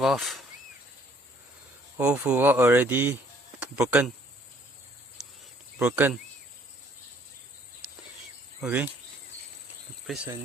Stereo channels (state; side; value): normal; both; correlation 0.61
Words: Old foot valve already broken. Okay. Replace a